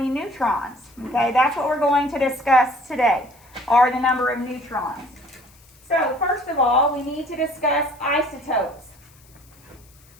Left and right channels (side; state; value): left; noise; hiss, 28 dB below the sound